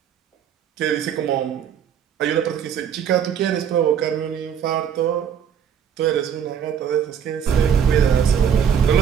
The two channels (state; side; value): quieter; left; 8.1 dB